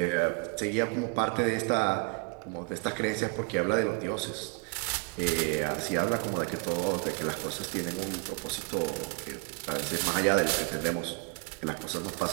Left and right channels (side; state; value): left; quieter; 35.5 dB